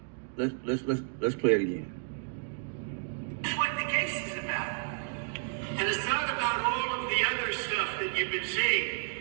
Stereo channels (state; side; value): silent; left; digital silence